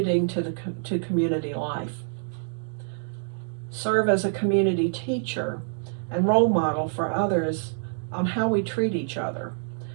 to community life. Serve as a community teacher and role model for others on how we treat each other.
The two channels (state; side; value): silent; left; digital silence